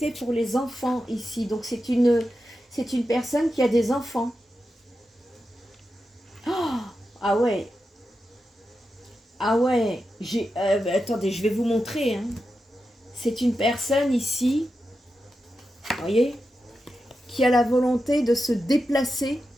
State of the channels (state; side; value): normal; both; correlation 0.89